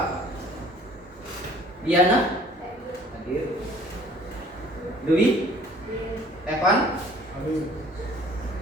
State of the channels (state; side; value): normal; both; correlation 0.54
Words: Diana? Hadir. Dwi? Evan?